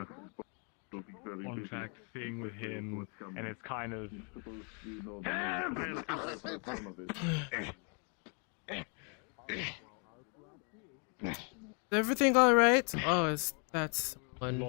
contract thing with him, and it's kind of. Is everything alright? Oh, that's one.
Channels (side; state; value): right; quieter; 38.1 dB